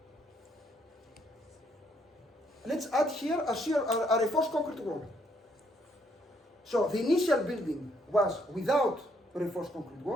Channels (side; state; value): both; normal; correlation 0.70